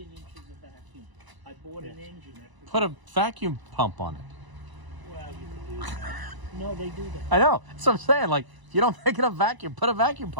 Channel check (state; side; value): late; left; 1.0 ms